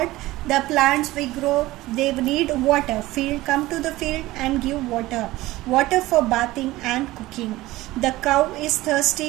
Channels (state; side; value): quieter; left; 18.0 dB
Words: The plants we grow, they need water. Come to the field and give water. Water for bathing and cooking. The cow is